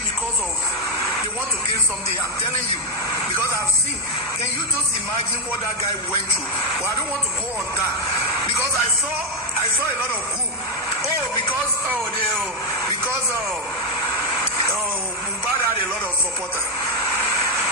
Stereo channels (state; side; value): normal; both; correlation 0.04